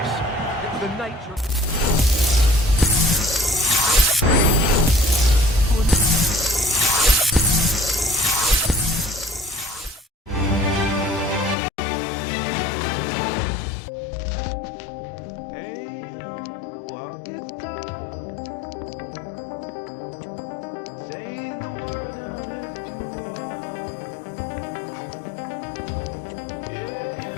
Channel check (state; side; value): drops out; right; at 11.6 s